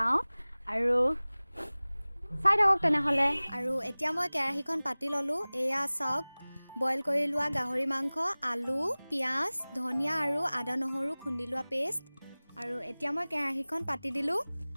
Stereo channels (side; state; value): both; inverted; correlation -1.00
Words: আৰু চাই থাকক তেনেহলে আৰু এতিয়া মই কেৰাহীখন পাতি ললো এয়া চাওক বইল কৰি লোৱা গাহৰি মাংস আলু পিয়াজ ধনিয়া আৰু আদা নহৰু খুন্দি লোৱা পেষ্ট আৰু এতিয়া মই কেৰাহীখন পাতি দিলো